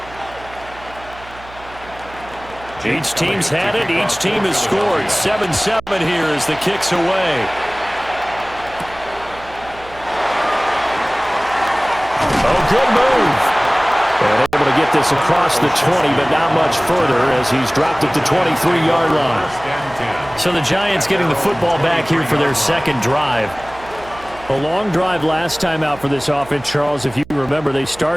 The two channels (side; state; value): right; noise; hum, 20 dB below the sound